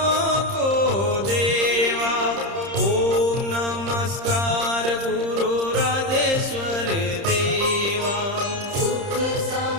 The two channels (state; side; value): late; left; 30 ms